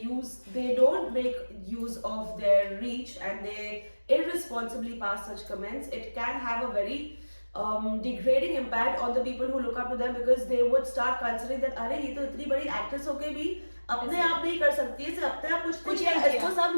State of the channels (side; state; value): both; inverted; correlation -1.00